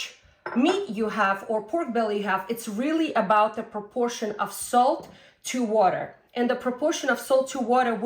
meat you have or pork belly you have. It's really about the proportion of salt to water. And the proportion of salt to water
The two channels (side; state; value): both; identical; correlation 1.00